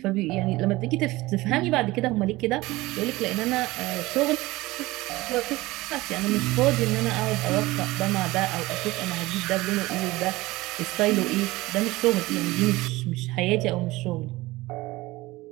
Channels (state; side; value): quieter; left; 19.6 dB